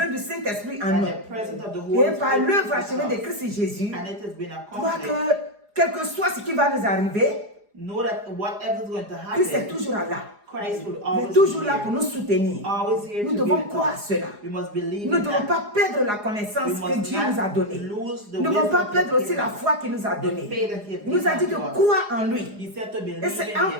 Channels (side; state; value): left; late; 4.9 ms